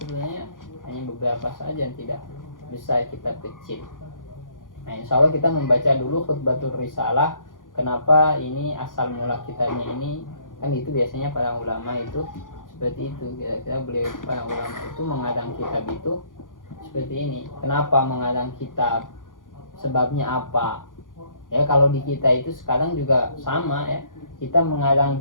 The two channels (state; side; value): late; right; 0.89 ms